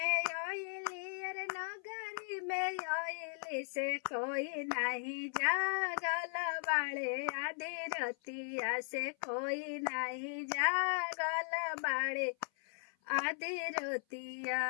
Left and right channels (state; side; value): silent; right; 53 dB below the other